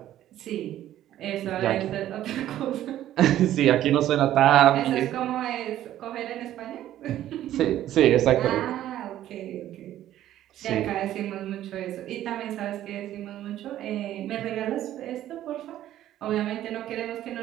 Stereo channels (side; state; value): left; quieter; 12.7 dB